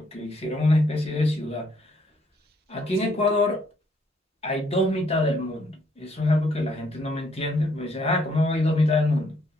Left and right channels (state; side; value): normal; both; correlation 0.69